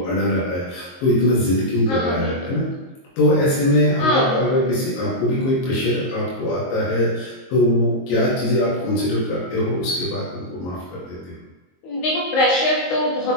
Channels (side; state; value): right; late; 22 ms